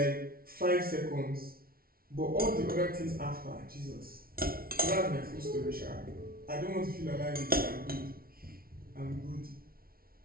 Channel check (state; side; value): late; left; 0.43 ms